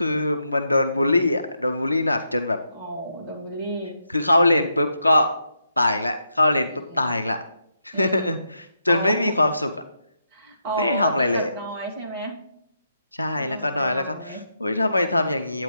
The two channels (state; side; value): inverted; both; correlation -0.82